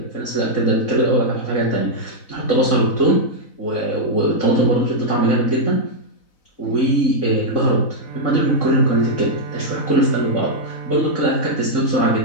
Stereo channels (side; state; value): right; late; 4.0 ms